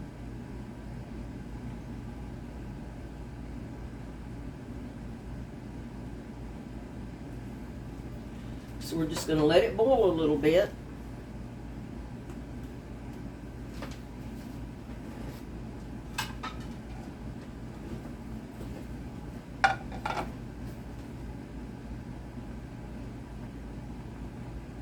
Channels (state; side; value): identical; both; correlation 1.00